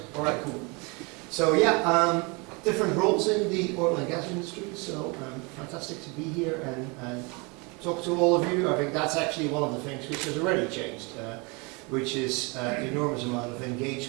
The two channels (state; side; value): quieter; left; 29.4 dB